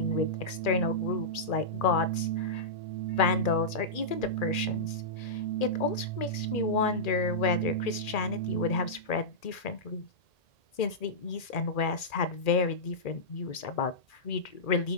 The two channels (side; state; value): right; late; 2.4 ms